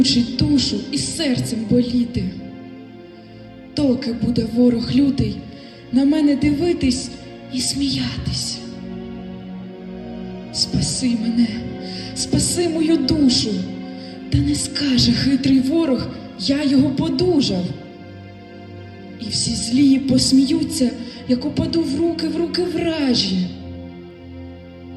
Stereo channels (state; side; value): identical; both; correlation 1.00